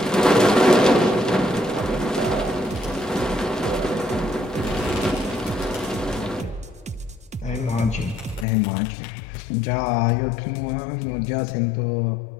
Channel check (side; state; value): right; drops out; at 8.5 s